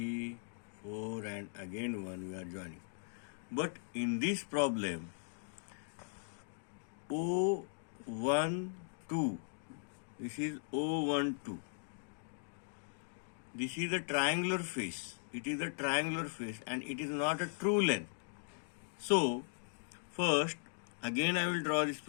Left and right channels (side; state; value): right; silent; digital silence